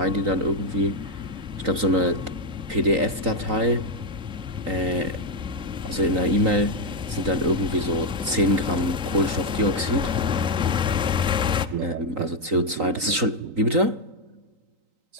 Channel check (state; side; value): late; left; 3.9 ms